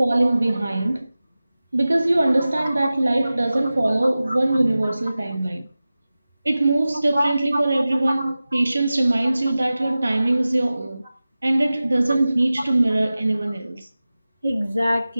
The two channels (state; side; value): inverted; both; correlation -0.96